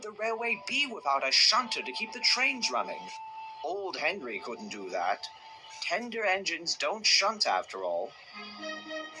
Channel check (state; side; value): identical; both; correlation 1.00